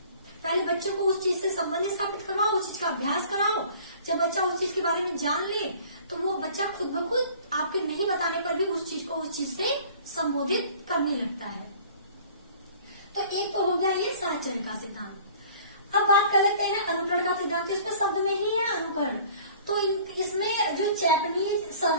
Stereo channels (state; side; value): inverted; both; correlation -0.49